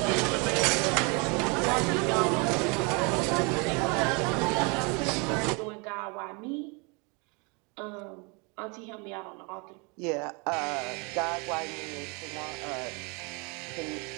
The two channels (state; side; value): quieter; left; 31.0 dB